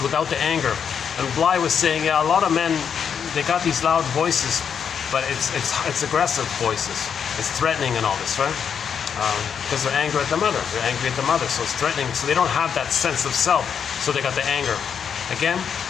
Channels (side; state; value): right; quieter; 7.3 dB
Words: the anger. And Bly was saying, yeah, a lot of men, they got these loud voices, but it's aggressive voices. It's threatening and all this, right? Because they're angry at the mother. They're angry at the mother, so it's threatening. So they don't have that sense of self, so they got the anger. Again,